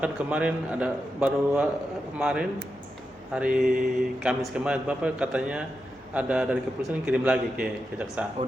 kemarin kemarin hari Kamis kemarin Bapak katanya ada dari kepolisian kirim lagi ke kejaksaan.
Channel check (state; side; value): normal; both; correlation 0.88